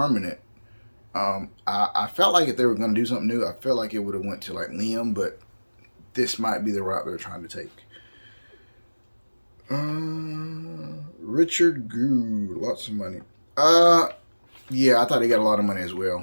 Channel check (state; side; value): inverted; both; correlation -1.00